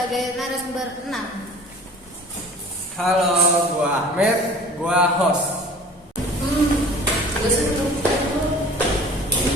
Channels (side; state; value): both; normal; correlation 0.45